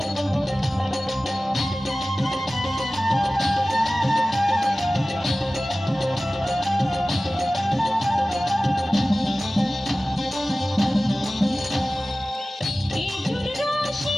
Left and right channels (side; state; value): both; normal; correlation 0.97